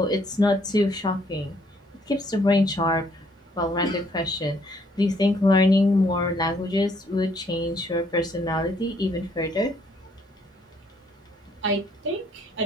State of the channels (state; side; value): normal; both; correlation 0.67